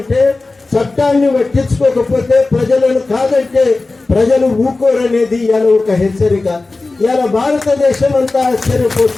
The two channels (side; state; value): right; quieter; 3.4 dB